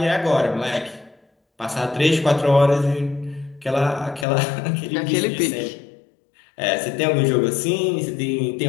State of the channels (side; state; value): right; drops out; at 4.2 s